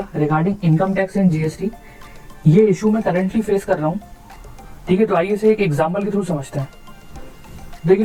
regarding income tax and GST. ये इशू मैं करंटली फेस कर रहा हूँ। ठीक है, तो आइए इसे एक एग्जांपल के थ्रू समझते हैं।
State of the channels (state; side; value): identical; both; correlation 1.00